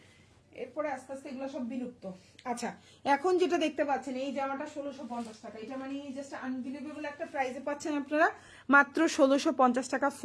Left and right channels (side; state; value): both; identical; correlation 1.00